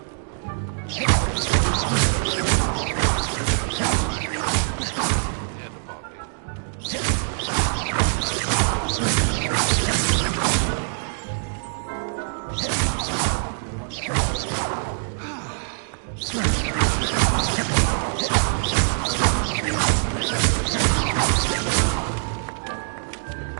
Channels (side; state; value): left; silent; digital silence